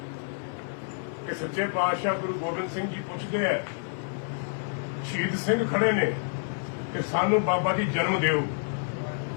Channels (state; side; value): silent; right; 59 dB below the other